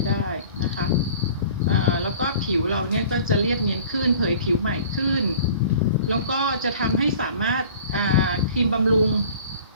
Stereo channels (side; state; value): both; inverted; correlation -0.46